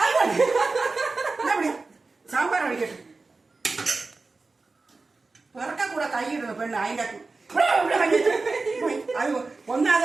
സാമ്പാർ കഴിക്കട്ടെ. പിറക്കൂടെ കൈയിടുന്നു പെണ്ണ്. അതിന്റെ അത്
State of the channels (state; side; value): quieter; left; 3.8 dB